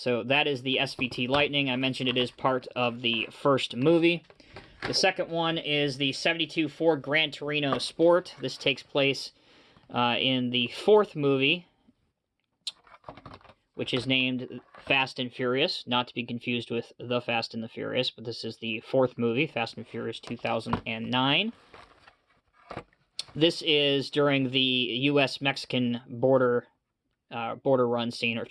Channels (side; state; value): both; identical; correlation 1.00